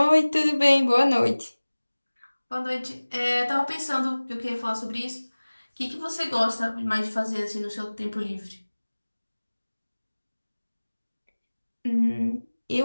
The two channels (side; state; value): both; inverted; correlation -1.00